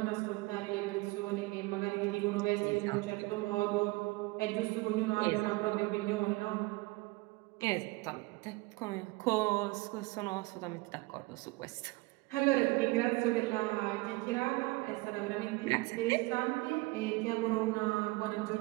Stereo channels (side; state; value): left; quieter; 23.0 dB